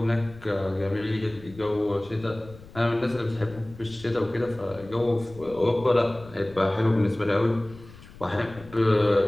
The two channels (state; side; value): noise; left; rumble, 19 dB below the sound